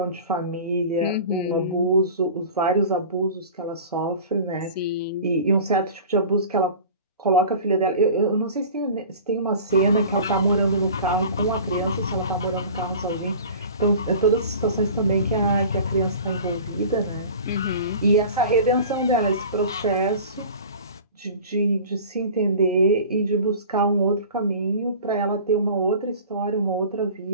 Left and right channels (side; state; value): both; inverted; correlation -0.40